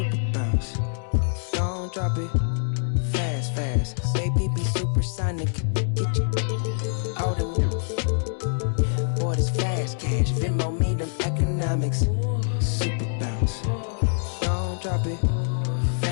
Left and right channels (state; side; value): silent; right; digital silence